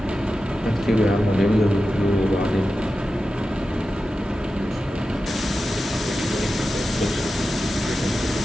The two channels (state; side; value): normal; both; correlation 0.92